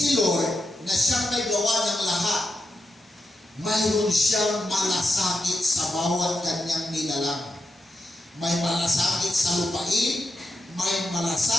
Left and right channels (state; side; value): normal; both; correlation 0.86